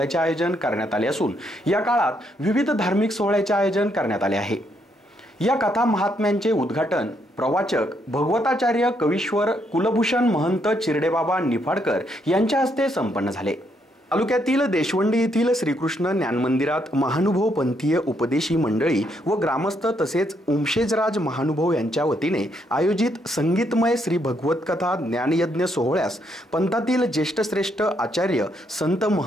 आयोजन करण्यात आले असून या काळात विविध धार्मिक सोहळ्याचे आयोजन करण्यात आले आहे। या कथा महात्म्यांचे उद्घाटन प्रवाचक भगवताचार्य कवीश्वर कुलभूषण महंत चिरडेबाबा निफाडकर यांच्या हस्ते संपन्न झाले। तालुक्यातील देशवंडी येथील श्रीकृष्ण ज्ञान मंदिरात महानुभव पंथीय उपदेशी मंडळी व ग्रामस्थ तसेच उमशेजराज महानुभव यांच्या वतीने आयोजित संगीतमय श्री भगवत कथा ज्ञानयज्ञ सोहळ्यास पंथातील ज्येष्ठ श्रेष्ठ आचार्य संत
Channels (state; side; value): normal; both; correlation 0.75